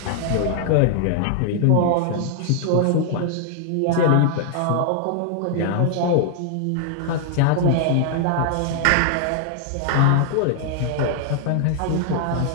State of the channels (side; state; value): both; different; correlation 0.00